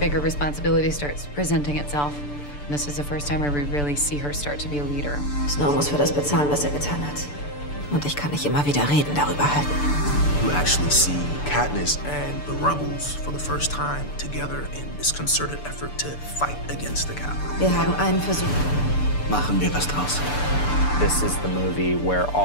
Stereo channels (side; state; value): right; late; 6.8 ms